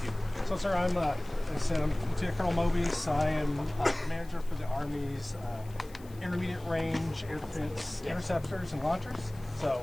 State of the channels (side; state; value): left; noise; hiss, 24 dB below the sound